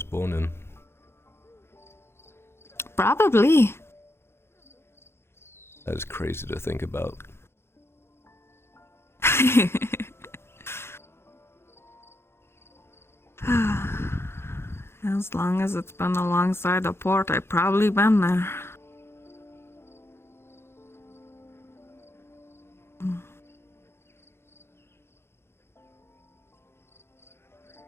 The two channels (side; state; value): right; late; 0.12 ms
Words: born in. Probably. That is crazy to think about. As long as it's been alongside a port, I've probably been there.